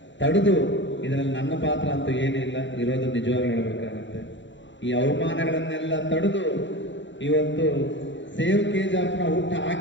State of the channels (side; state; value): right; late; 0.54 ms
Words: ತಡೆದು, ಇದರಲ್ಲಿ ನನ್ನ ಪಾತ್ರ ಅಂತೂ ಏನಿಲ್ಲ, ಇರೋದು ನಿಜವಾಗಿ ಹೇಳಬೇಕಾಗುತ್ತೆ. ಈ ಅವಮಾನಗಳನ್ನೆಲ್ಲ ತಡೆದು ಇವತ್ತು ಸೇವ್ KGFನ ಹುಟ್ಟು